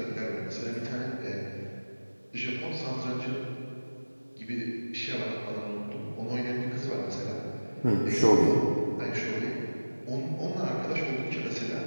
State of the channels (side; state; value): both; inverted; correlation -1.00